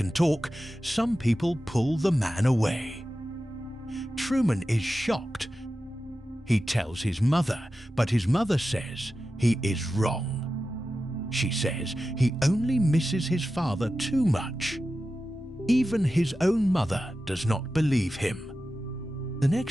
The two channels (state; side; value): normal; both; correlation 0.93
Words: talk, some people pull the man away. Truman is shocked. He tells his mother, but his mother says he is wrong. She says he only misses his father too much. Even his own mother does not believe him. The